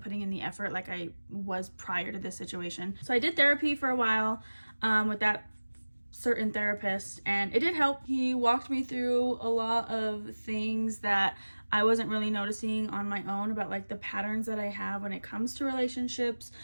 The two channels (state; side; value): inverted; both; correlation -1.00